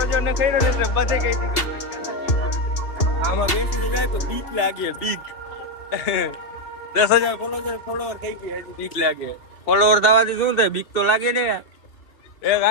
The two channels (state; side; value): late; right; 2.8 ms